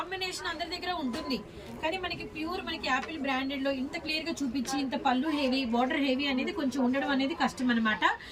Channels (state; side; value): identical; both; correlation 1.00